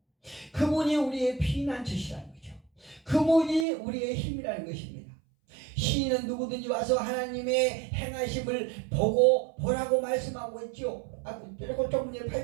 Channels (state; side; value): drops out; left; at 3.7 s